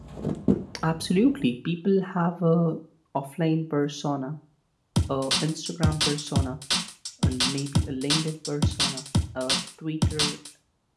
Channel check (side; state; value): both; identical; correlation 1.00